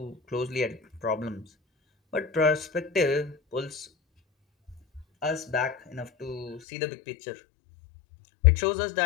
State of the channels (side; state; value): right; drops out; at 6.6 s